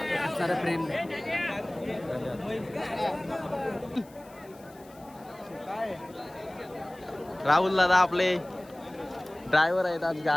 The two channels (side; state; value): left; noise; hiss, 26 dB below the sound